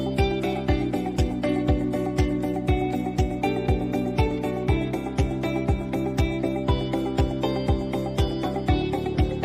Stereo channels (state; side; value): identical; both; correlation 1.00